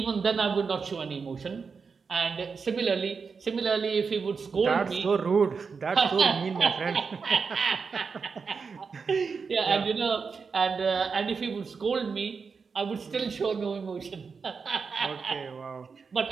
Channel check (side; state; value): left; quieter; 5.3 dB